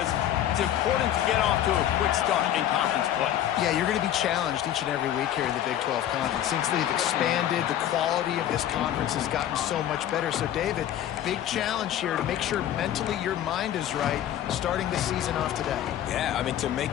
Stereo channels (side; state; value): right; quieter; 11.4 dB